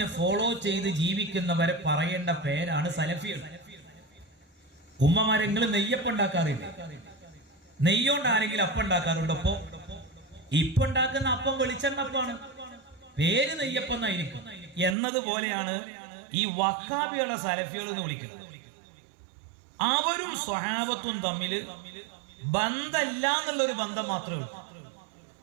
ഫോളോ ചെയ്ത് ജീവിക്കുന്നവരെ പറയേണ്ട പേരാണ് സലഫികൾ. ഉമ്മമാരെങ്കിലും നെയ്യപ്പം ഉണ്ടാക്കാറില്ല. നെയ്യോണ്ട് ആരെങ്കിലും അപ്പം ഉണ്ടാക്കാറുണ്ട്? അപ്പോ ഇപ്പൊ ഉണ്ടാക്കുന്ന അപ്പം വെളിച്ചെണ്ണപ്പാണ്, പേര് നെയ്യപ്പം എന്നായിരിക്കും. എന്നതുപോലെയാണ് ഈ വഹാബിയുള്ള സലഫികൾ എന്ന് വിളിക്കുന്നത്. അവരും സ്വഹാബത്തും തമ്മിൽ ബന്ധമില്ല എന്നുള്ളൊരു ബന്ധം മാത്രമേ ഉള്ളൂ,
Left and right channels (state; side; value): drops out; left; at 15.0 s